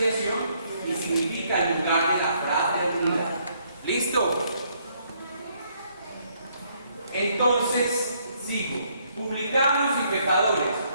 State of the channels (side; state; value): both; inverted; correlation -0.69